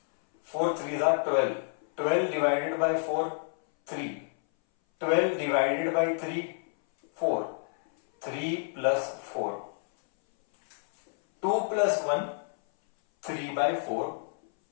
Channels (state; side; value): silent; right; 59 dB below the other